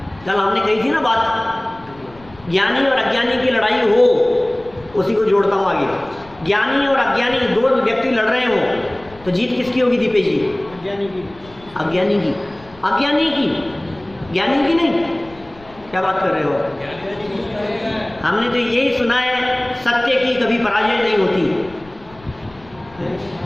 कल हमने कही थी ना बात, ज्ञानी और अज्ञानी की लड़ाई हो, उसी को जोड़ता हूं आगे। ज्ञानी और अज्ञानी दो व्यक्ति लड़ रहे हो तो जीत किसकी होगी दीपेश जी? अज्ञानी की। अज्ञानी की। अज्ञानी की, ज्ञानी की नहीं। क्या बात कर रहे हो? हमने तो यही सुना है, सत्य की कभी पराजय नहीं होती,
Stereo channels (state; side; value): noise; left; rumble, 24 dB below the sound